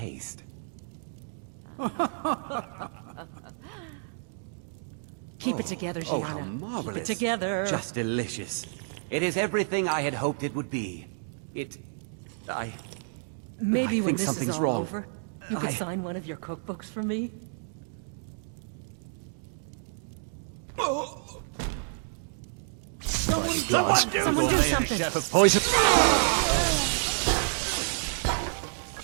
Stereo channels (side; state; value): left; silent; digital silence